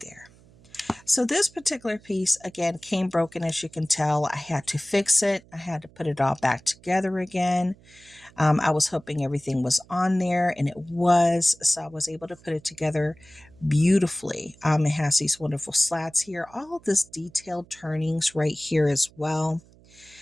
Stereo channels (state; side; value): noise; right; hum, 26 dB below the sound